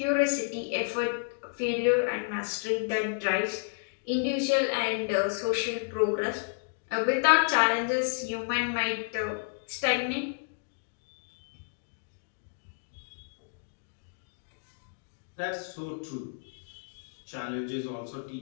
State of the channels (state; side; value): silent; right; digital silence